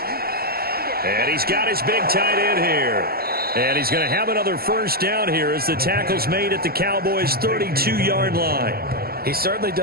And he's got his big tight end here. And he's going to have another 1st down here as the tackle's made at the Cowboys' 32-yard line. He's certainly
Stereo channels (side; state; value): left; late; 0.44 ms